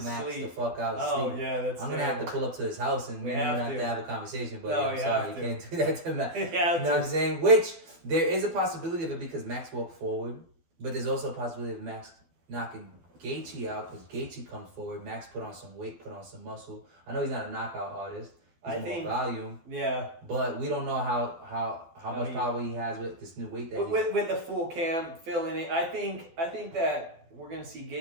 Max sleep. the fuck out, oh yeah, that's. I'm gonna have to pull up to his house and we're gonna have to have a conversation. But I'm sorry, you can't do that to Max. You know what I'm saying? Which there is a possibility of it because Max walked forward, but there's also a possibility of Max knocking Gaethje out because Gaethje comes forward. Max put on some weight, put on some muscle. I know he's not a knockout artist. He's more volume. Yeah. But we don't know how much power he has with this new weight that with the full cam filling it. I think that we're gonna see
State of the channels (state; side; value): late; left; 12 ms